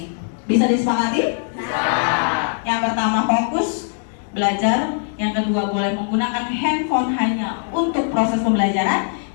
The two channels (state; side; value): silent; right; 65 dB below the other